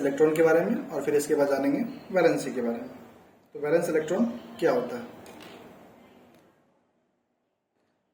के बारे में और फिर इसके बाद जानेंगे वैलेंसी के बारे में। तो वैलेंस इलेक्ट्रॉन क्या होता है?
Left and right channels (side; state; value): both; identical; correlation 1.00